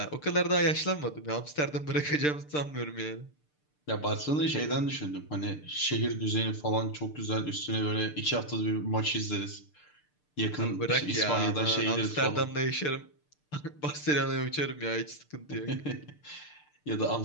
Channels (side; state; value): right; late; 6.7 ms